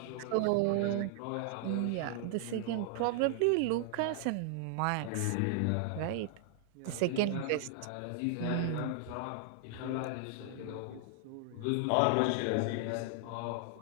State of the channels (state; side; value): different; both; correlation 0.00